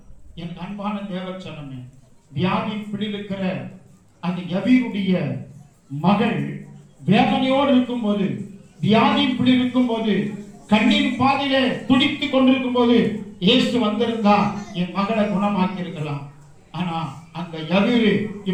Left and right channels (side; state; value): both; identical; correlation 1.00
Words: என் அன்பான தேவச்சனமே, வியாதி பிடிக்கிற அந்த யவீருடைய மகள் வேதனையோடு இருக்கும் போது, வியாதி பிடி இருக்கும் போது, கண்ணீர் பாதையிலே துடித்துக் கொண்டிருக்கும் போது இயேசு வந்திருந்தா என் மகளை குணமாக்கி இருக்கலாம். ஆனா அந்த யவீரு